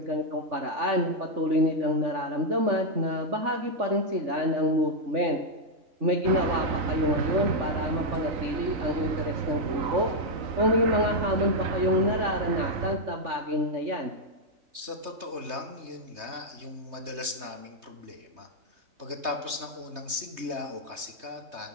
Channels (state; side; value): late; left; 3.2 ms